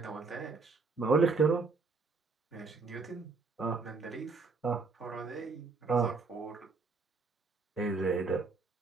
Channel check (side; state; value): left; quieter; 4.1 dB